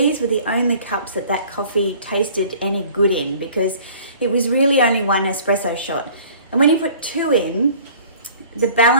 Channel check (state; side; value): inverted; both; correlation -0.49